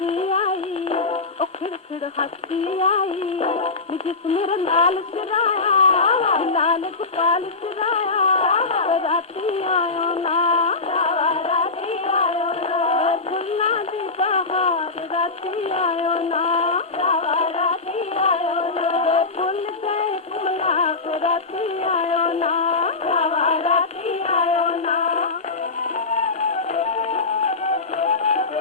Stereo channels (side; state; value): right; quieter; 3.8 dB